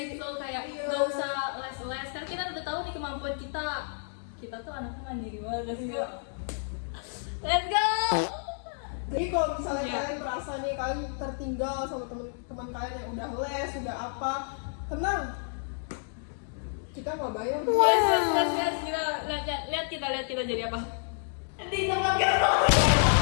it flow, kayak Iya. nggak usah les. Karena kita udah tahu nih kemampuan kita. Kita tuh anaknya mandiri banget. Let's go. Iya. Let's go. Jadi kalau misalnya Iya. kalian merasa nih kalian tertinggal sama teman-teman kalian yang udah les, udah apa, tenang. Kita nggak bayar. Yes. Kita lihat kita jadi apa?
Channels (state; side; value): silent; right; digital silence